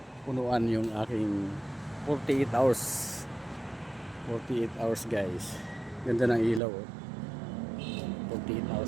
punuan yung aking 48 hours. 48 hours guys. Ganda ng ilaw. 48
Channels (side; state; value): left; drops out; at 6.6 s